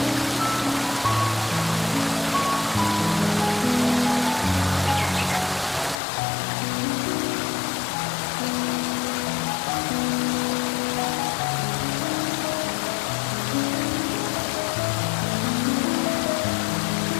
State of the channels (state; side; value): drops out; right; at 6.0 s